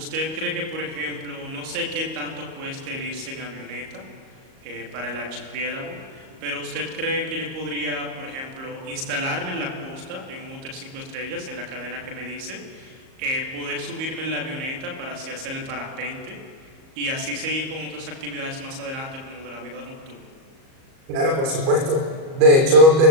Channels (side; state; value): left; late; 38 ms